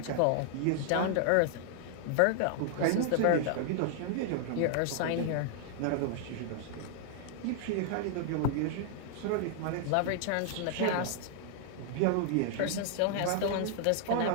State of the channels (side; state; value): both; different; correlation -0.01